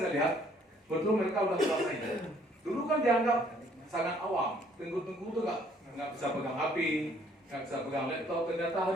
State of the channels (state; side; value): normal; both; correlation 0.62